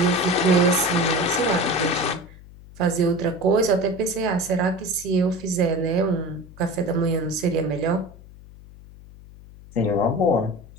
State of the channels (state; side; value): noise; left; hum, 20 dB below the sound